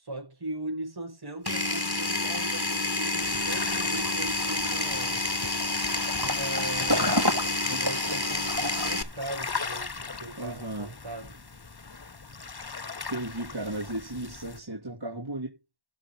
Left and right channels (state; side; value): late; left; 1.1 ms